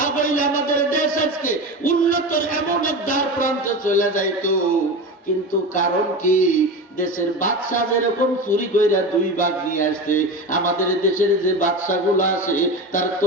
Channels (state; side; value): normal; both; correlation 0.26